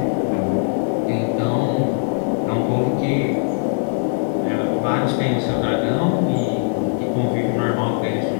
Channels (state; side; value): silent; right; digital silence